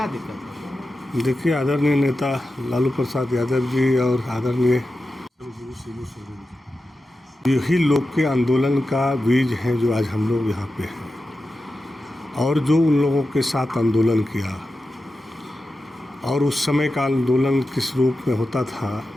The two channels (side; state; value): both; normal; correlation 0.92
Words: दिक्कत है? देखिए, आदरणीय नेता लालू प्रसाद यादव जी और आदरणीय यही लोग के आंदोलन का बीज है जो आज हम लोग यहाँ पे हैं। और जो उन लोगों के साथ आंदोलन किया और उस समय का आंदोलन किस रूप में होता था,